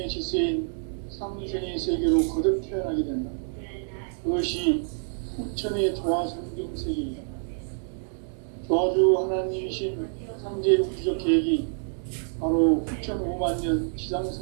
질서인 상생의 세계로 거듭 태어나게 된다. 그것이 후천의 조화성경 세계이다. 조화주 하나님이신 상제 우주적 계획이 바로 후천 5만 년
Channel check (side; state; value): left; silent; digital silence